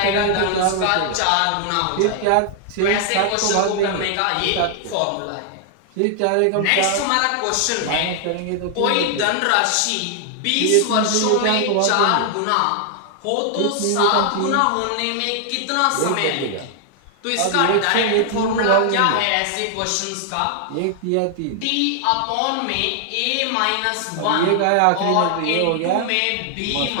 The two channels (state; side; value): different; both; correlation 0.00